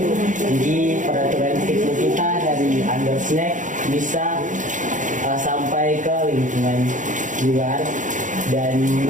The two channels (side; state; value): left; late; 0.37 ms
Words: Jadi peraturan hidup kita dari under snack bisa sampai ke lingkungan luar, dan